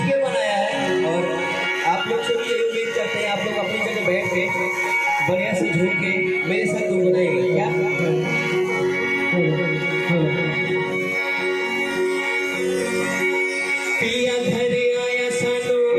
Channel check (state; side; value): identical; both; correlation 1.00